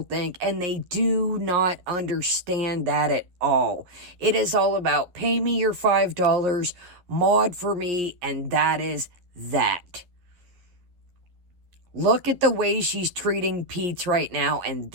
think, and they do not understand that at all. It is all about pay me your $5, mod for me, and that is that. Look at the way she's treating Pete's right now, and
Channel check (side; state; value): left; late; 11 ms